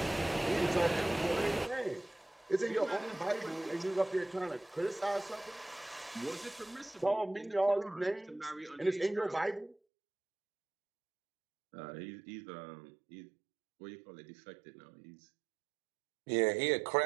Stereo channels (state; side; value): drops out; left; at 9.8 s